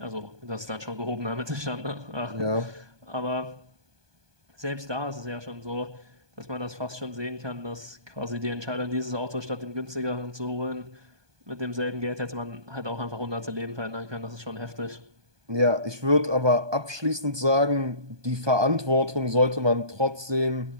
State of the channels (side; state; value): left; late; 1.2 ms